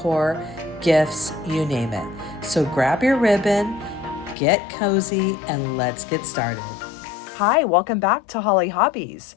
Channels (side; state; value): right; drops out; at 4.4 s